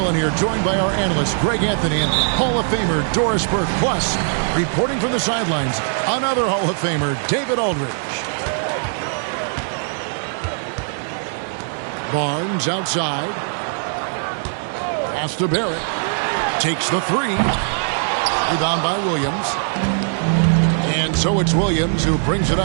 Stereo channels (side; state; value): left; silent; 66 dB below the other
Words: here, joined by our analyst Greg Anthony and Hall of Famer Doris Burke. Plus, reporting from the sidelines, another Hall of Famer, David Aldridge. Barnes outside. Pass to Barrett. Takes the three. Rebound by Williams. And so it's Williams who brings it